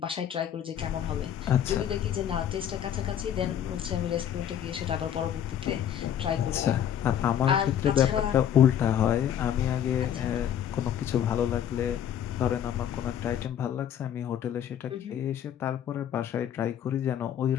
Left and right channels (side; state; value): right; quieter; 9.8 dB